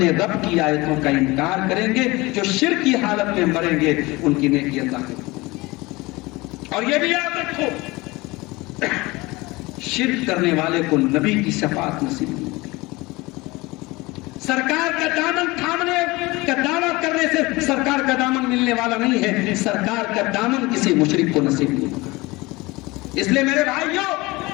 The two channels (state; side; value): quieter; right; 22.3 dB